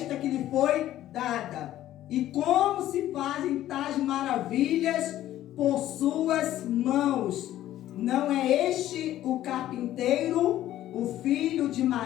que lhe foi dada? E como se fazem tais maravilhas por suas mãos? Não é este o carpinteiro, o filho de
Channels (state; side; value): quieter; right; 13.3 dB